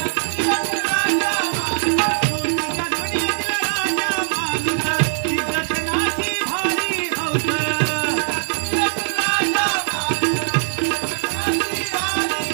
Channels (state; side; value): silent; left; digital silence